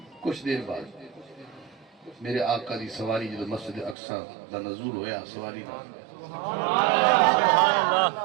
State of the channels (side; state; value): left; drops out; at 4.0 s